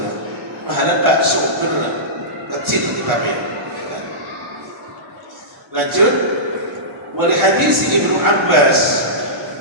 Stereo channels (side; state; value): both; normal; correlation -0.18